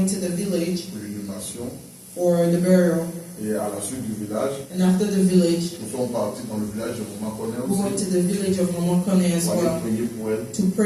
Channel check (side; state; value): both; identical; correlation 1.00